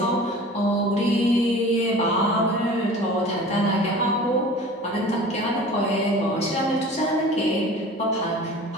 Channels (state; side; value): normal; both; correlation 0.41